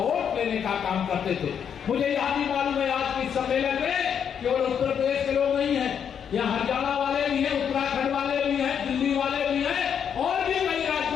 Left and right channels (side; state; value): right; quieter; 7.9 dB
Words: लेने का काम करते थे। मुझे याद ही मालूम है आज के सम्मेलन में केवल उत्तर प्रदेश के लोग नहीं है, यहाँ हरियाणा वाले भी हैं, उत्तराखंड वाले भी हैं, दिल्ली वाले भी हैं और भी कई